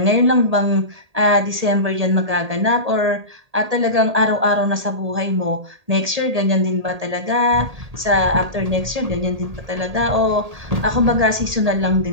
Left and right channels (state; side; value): late; left; 1.8 ms